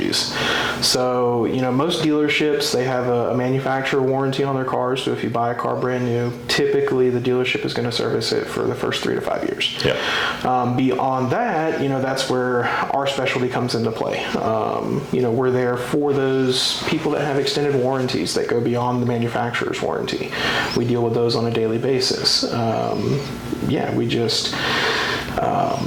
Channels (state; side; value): identical; both; correlation 1.00